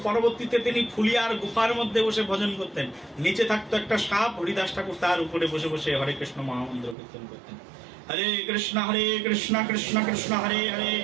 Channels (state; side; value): drops out; left; at 7.0 s